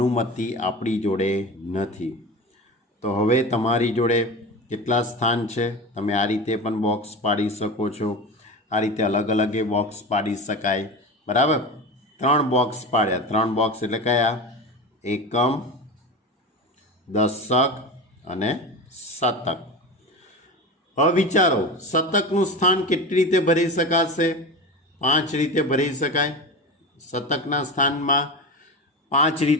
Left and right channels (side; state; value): both; normal; correlation 0.27